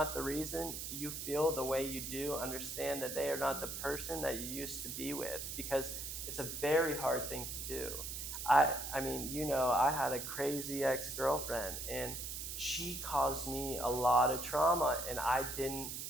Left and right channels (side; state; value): right; noise; hiss, 6 dB below the sound